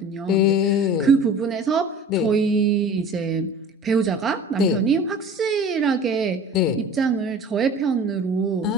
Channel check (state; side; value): normal; both; correlation 0.41